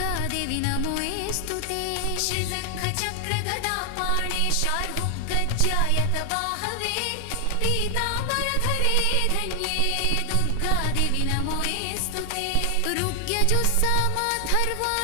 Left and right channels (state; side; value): different; both; correlation 0.00